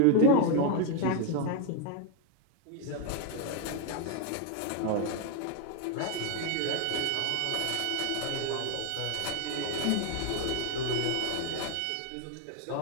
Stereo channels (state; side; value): different; both; correlation 0.01